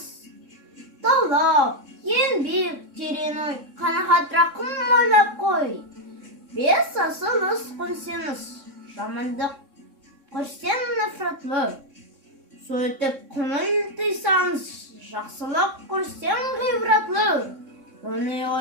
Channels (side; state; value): left; late; 3.6 ms